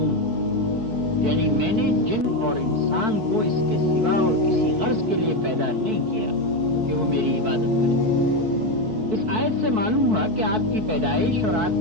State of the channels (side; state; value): left; late; 4.6 ms